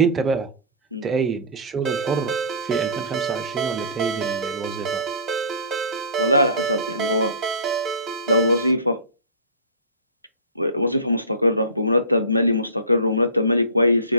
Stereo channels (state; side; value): inverted; both; correlation -0.37